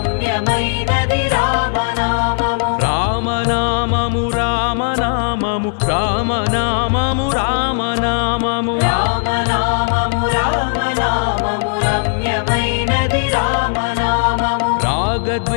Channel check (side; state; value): right; silent; digital silence